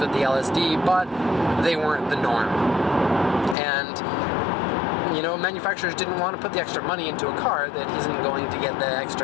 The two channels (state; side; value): drops out; right; at 3.6 s